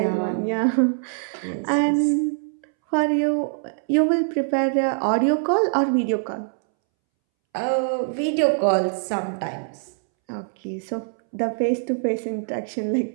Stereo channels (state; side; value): silent; left; 63 dB below the other